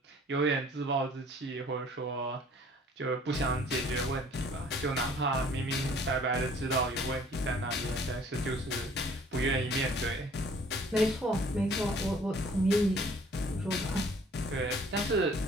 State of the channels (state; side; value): normal; both; correlation 0.55